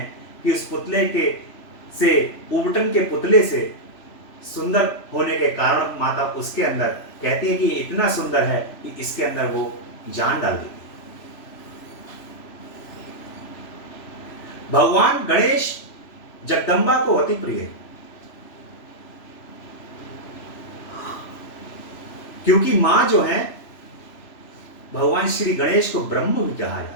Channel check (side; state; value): right; late; 3.0 ms